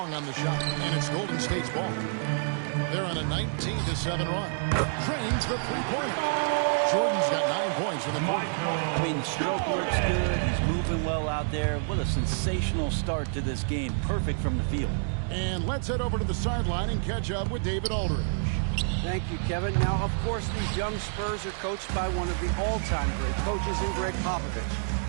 on the shot. And it's Golden State's ball. They're on a 19-7 run. Drains the three-pointer. Jordan's got 9 points in the quarter. I mean, the stroke looks good. He's moving well out there. What a sensational start to this game. Perfect from the field. And let's head over to the sideline and catch up with David Aldridge. Thank you, Kevin. Now, of course, these young Spurs are coached by one of the all-time great coaches in Greg Popovich.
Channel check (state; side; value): silent; left; digital silence